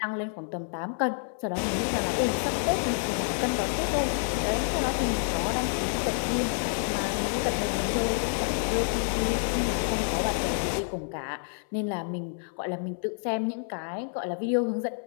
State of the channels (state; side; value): silent; right; 59 dB below the other